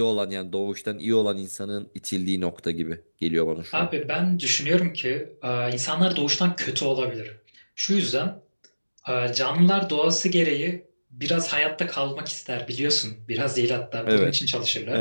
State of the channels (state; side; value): inverted; both; correlation -1.00